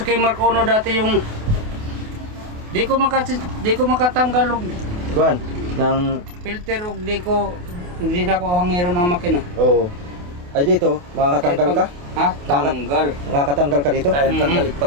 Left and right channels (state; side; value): late; left; 28 ms